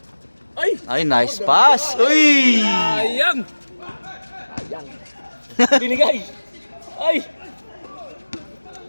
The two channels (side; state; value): both; inverted; correlation -1.00